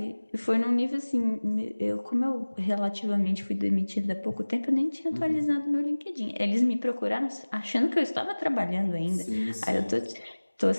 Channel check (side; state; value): both; inverted; correlation -1.00